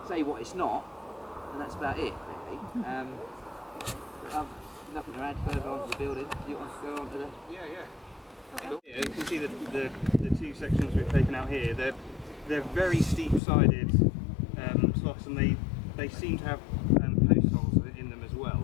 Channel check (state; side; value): drops out; right; at 13.4 s